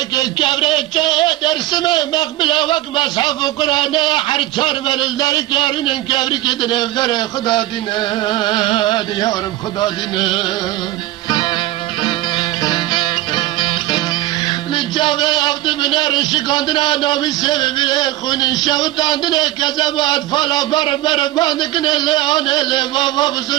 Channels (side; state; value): left; quieter; 16.6 dB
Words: كبرك درسمه مقبله وقت مصحف قرآن حرچار برل در کارین کبرك دنفر خدا دینه دیارم خدا دینه لجاوه هفته بنار شکاندنا نامی سببی خونی شوتاندنه کذبات فالا بر باندکنه لیانه لی بابا